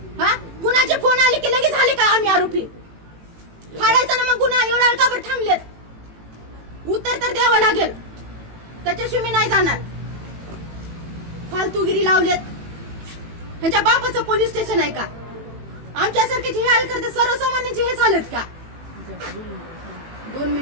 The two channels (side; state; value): left; late; 18 ms